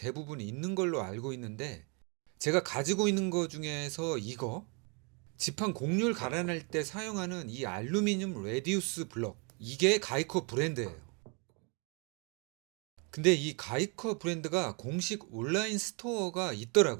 있는 걸로 알고 있는데, 제가 가지고 있는 거 중에서 이거 지판 곡률 갈아낼 때 사용하는 이 알루미늄 레디우스 블럭, 이게 가이커 브랜드예요. 근데 이 가이커 브랜드가 공식 온라인 스토어가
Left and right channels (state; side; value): quieter; left; 34.1 dB